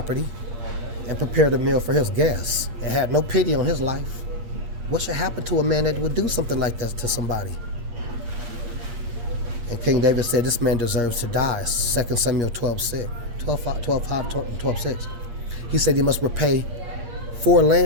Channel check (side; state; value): left; late; 8.5 ms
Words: and prepared a meal for his guests and had no pity on his life. What should happen to a man that would do something like that to somebody? And King David said this man deserves to die. 2 Samuel 12:6. He said he must repay 4